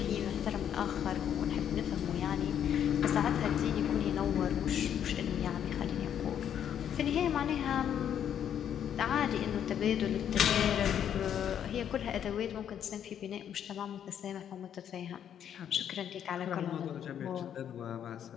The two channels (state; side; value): quieter; right; 9.4 dB